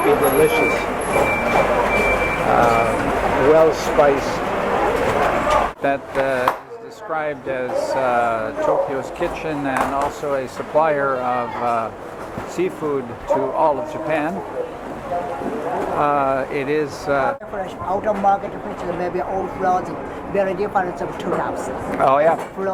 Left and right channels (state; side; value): identical; both; correlation 1.00